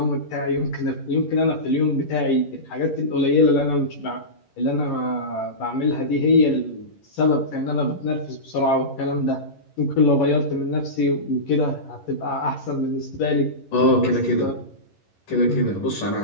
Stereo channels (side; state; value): right; late; 11 ms